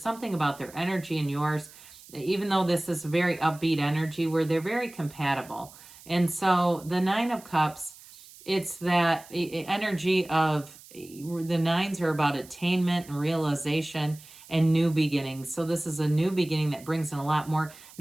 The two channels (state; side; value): noise; right; hiss, 21 dB below the sound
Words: about their energy and yours, even though this is very upbeat energy, where they're very compatible. And so the Nine of Cups, it's that energy of the nines are about attainment and realization and new beginnings. So this is a new beginning that brings in a lot more.